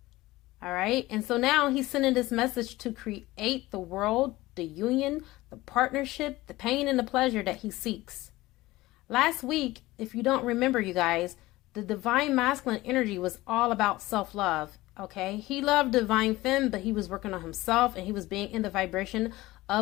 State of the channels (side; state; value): right; quieter; 18.5 dB